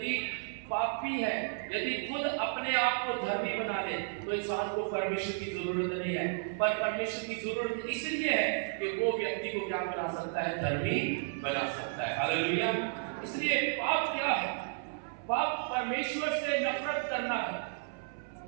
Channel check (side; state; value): left; silent; 56 dB below the other